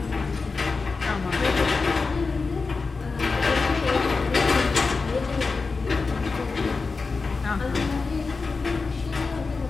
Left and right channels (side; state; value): right; quieter; 4.3 dB